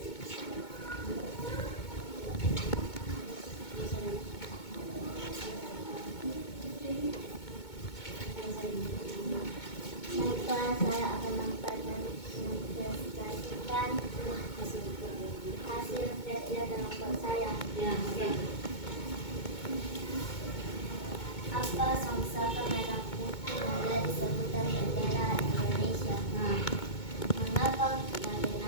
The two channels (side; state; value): right; late; 2.2 ms